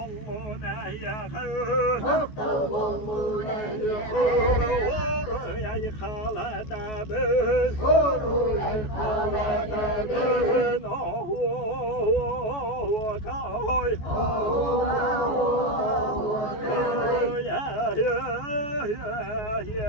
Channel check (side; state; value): right; late; 14 ms